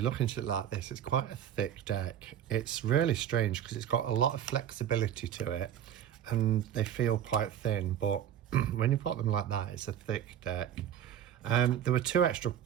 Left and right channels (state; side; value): quieter; left; 10.0 dB